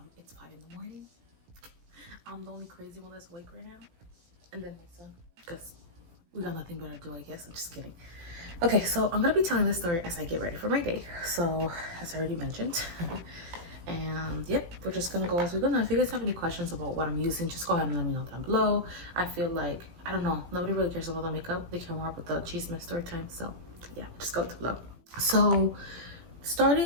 it's 5 in the morning. I'm the only crazy one that's awake right now, and then my son, because we got nothing better to do, I guess. I'm just kidding. Okay, so I'm gonna be telling this story as I get ready for my day. So as I already mentioned, and yep, we're just gonna go as we're gonna. If you guys have any questions about what I'm using, just go ahead and let me know down below. I feel like, I don't know, nobody really cares about the makeup. They care more about the chisme story time. So yeah, just go with the flow. So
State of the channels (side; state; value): left; late; 17 ms